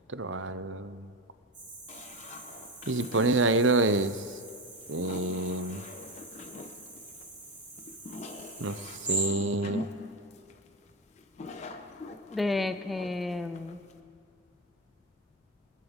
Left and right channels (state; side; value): normal; both; correlation 0.16